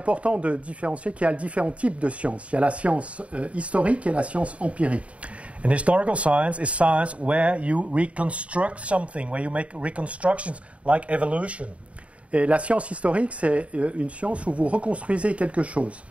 de différencier qu'il y a différents types de sciences. Il y a la science historique et la science empirique. And historical science is science where you reconstruct something, where you make reconstructions like evolution. Et la science historique, c'est une science où vous reconstruisez quelque chose.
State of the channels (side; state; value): left; late; 0.064 ms